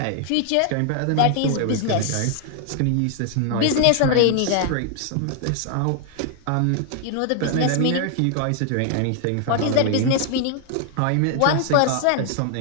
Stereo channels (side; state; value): both; different; correlation 0.00